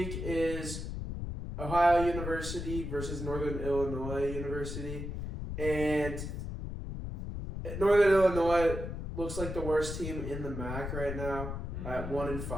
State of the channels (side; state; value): left; noise; rumble, 6 dB below the sound